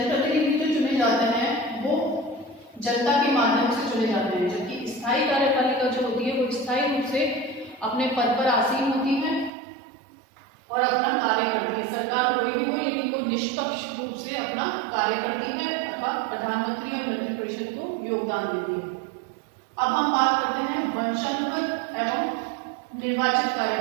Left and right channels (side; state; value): left; drops out; at 9.5 s